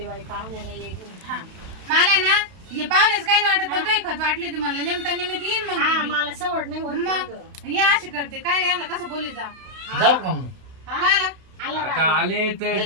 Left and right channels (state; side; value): late; left; 32 ms